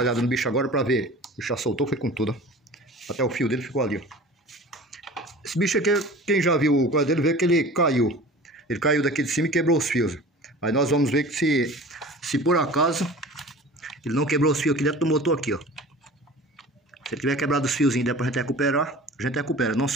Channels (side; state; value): both; normal; correlation 0.40